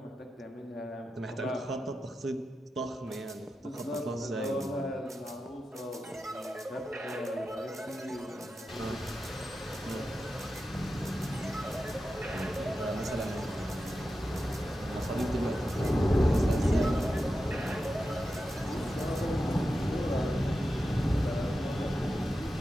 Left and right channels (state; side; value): normal; both; correlation 0.91